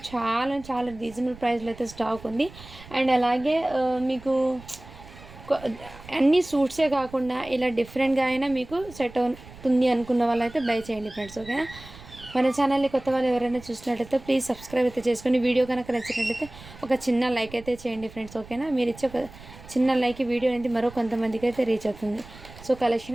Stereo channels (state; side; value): noise; right; rumble, 19 dB below the sound